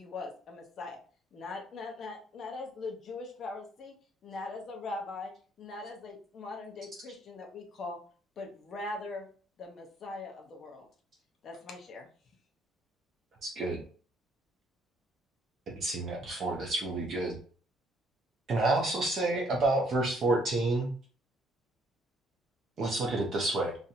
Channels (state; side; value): normal; both; correlation 0.66